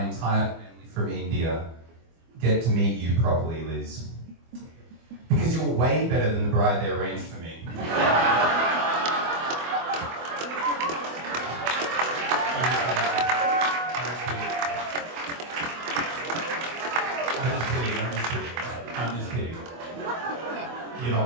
entire family from India get to meet you properly, Liz. Because you're way better than the bride they arranged for me. I'm just kidding. You're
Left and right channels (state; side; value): late; left; 24 ms